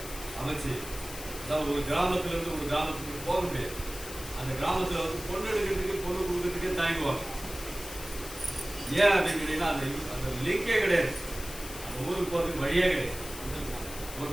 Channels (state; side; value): noise; left; hiss, 11 dB below the sound